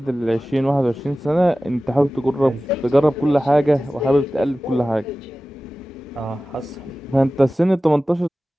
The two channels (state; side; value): normal; both; correlation 0.96